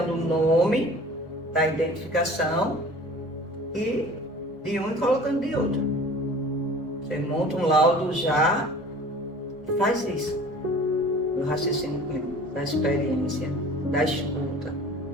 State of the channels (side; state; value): both; normal; correlation 0.44